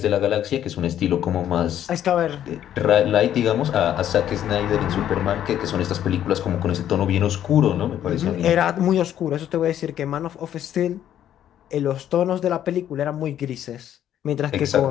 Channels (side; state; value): right; quieter; 10.9 dB